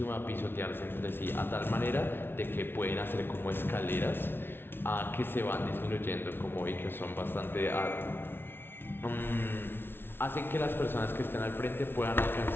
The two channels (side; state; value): right; late; 0.11 ms